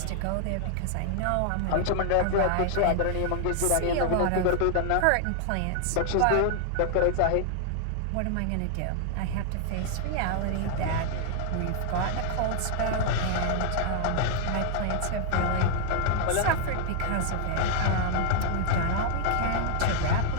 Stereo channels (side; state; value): both; different; correlation 0.00